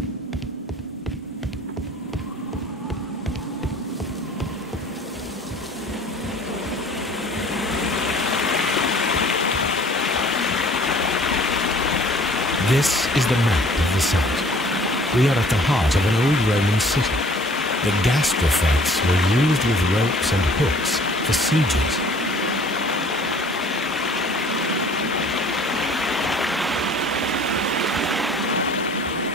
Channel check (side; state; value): both; normal; correlation 0.52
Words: This is the map of the site. We are at the heart of an old Roman city. The gastrofetes were used with ropes and hooks for sieges.